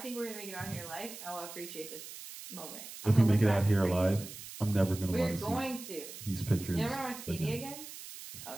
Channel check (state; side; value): noise; right; hiss, 12 dB below the sound